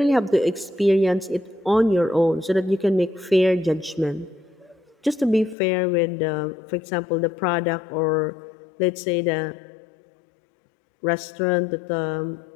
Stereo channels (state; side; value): drops out; right; at 5.6 s